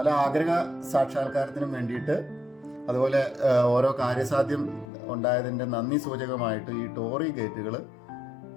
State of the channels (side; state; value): right; drops out; at 4.9 s